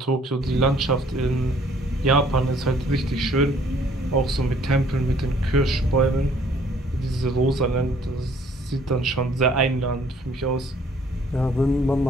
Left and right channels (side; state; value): both; normal; correlation 0.60